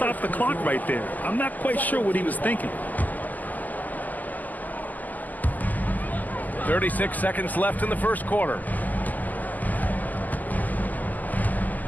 the clock right there. I'm not quite sure what he was thinking. 36 seconds left in the first quarter.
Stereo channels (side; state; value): right; late; 0.082 ms